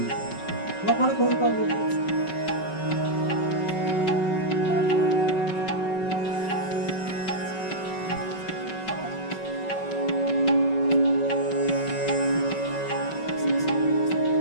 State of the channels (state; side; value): late; right; 5.3 ms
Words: বাবারে করে পারবো